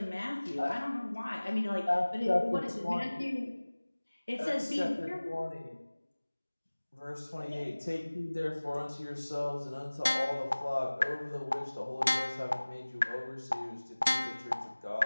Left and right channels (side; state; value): both; inverted; correlation -1.00